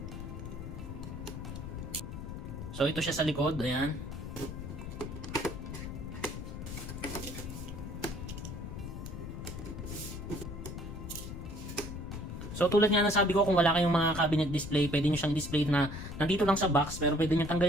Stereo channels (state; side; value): noise; left; rumble, 8 dB below the sound